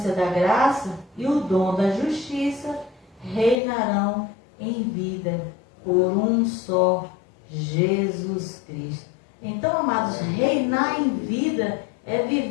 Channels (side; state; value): right; drops out; at 3.6 s